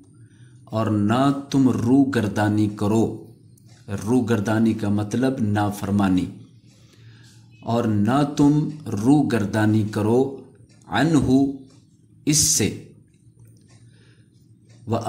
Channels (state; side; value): identical; both; correlation 1.00